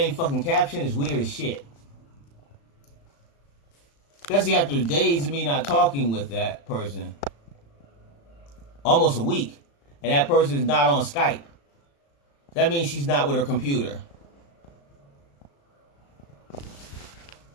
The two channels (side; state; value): right; late; 35 ms